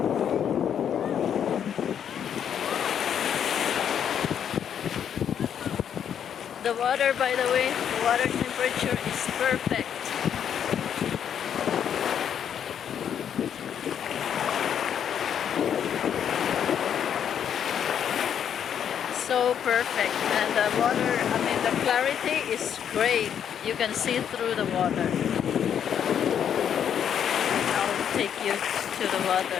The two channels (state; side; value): quieter; right; 8.7 dB